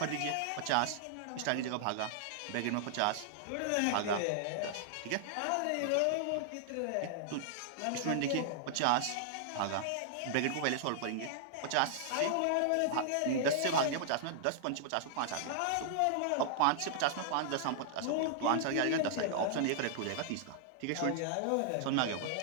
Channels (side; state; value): both; different; correlation -0.01